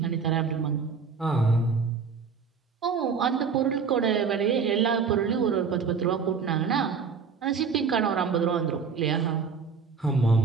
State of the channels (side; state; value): left; quieter; 5.7 dB